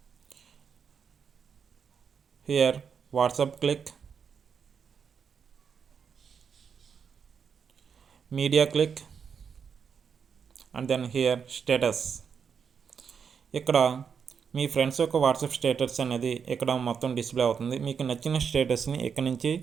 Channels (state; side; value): quieter; left; 6.7 dB